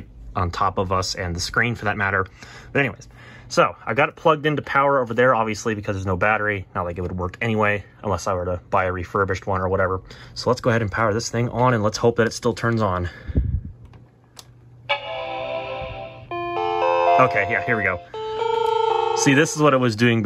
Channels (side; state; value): both; identical; correlation 1.00